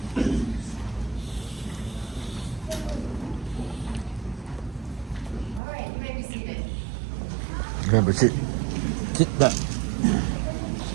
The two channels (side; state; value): left; drops out; at 5.6 s